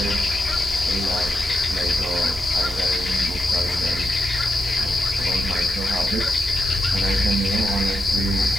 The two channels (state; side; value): normal; both; correlation 0.86